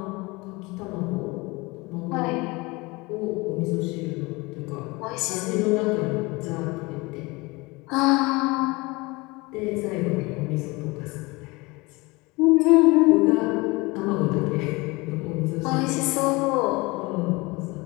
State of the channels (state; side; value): quieter; right; 24.2 dB